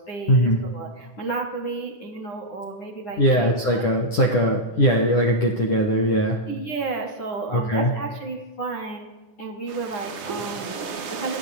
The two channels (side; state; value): right; late; 9.8 ms